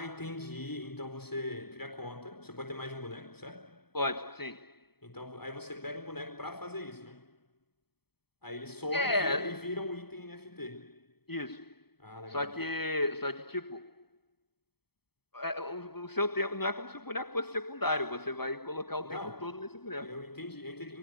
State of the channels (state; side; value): late; right; 0.97 ms